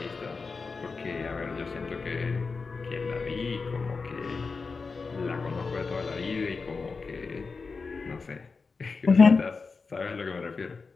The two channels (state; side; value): quieter; right; 4.5 dB